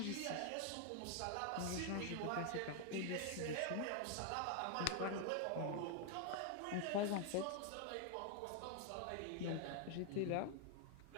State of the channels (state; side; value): different; both; correlation 0.00